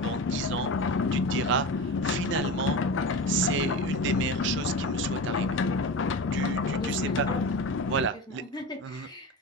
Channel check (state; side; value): normal; both; correlation 0.27